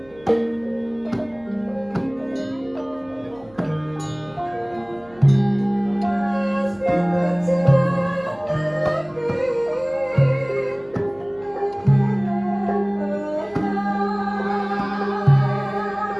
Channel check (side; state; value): right; noise; hum, 27 dB below the sound